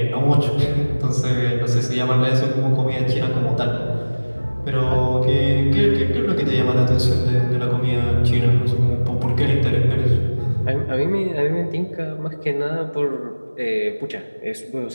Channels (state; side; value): inverted; both; correlation -1.00